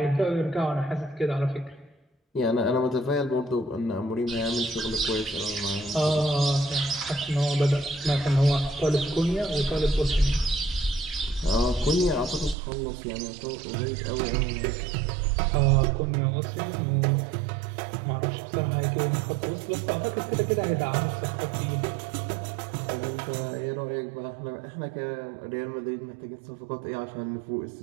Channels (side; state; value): left; drops out; at 12.6 s